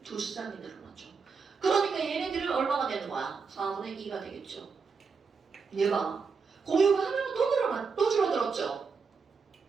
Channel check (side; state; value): left; quieter; 5.2 dB